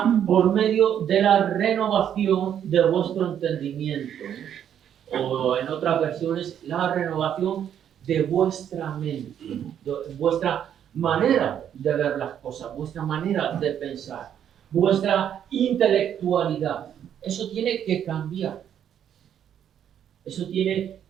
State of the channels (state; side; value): quieter; left; 9.5 dB